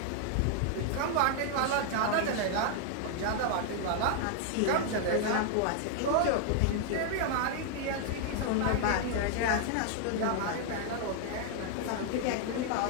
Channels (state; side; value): different; both; correlation 0.00